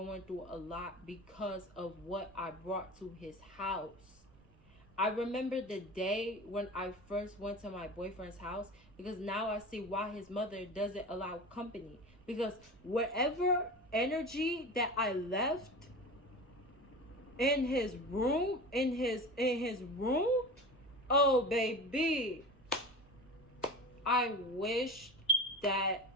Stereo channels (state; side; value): noise; right; rumble, 27 dB below the sound